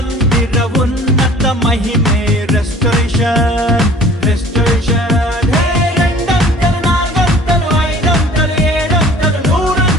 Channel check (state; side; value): normal; both; correlation 0.48